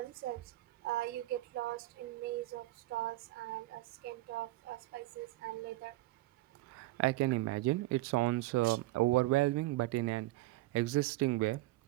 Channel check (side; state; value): left; quieter; 18.3 dB